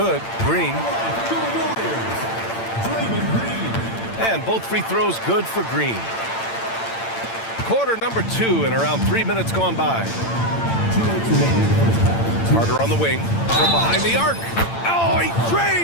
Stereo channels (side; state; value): right; late; 8.8 ms